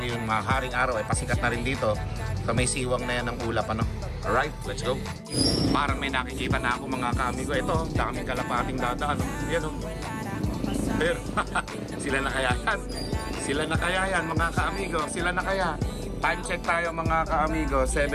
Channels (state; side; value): identical; both; correlation 1.00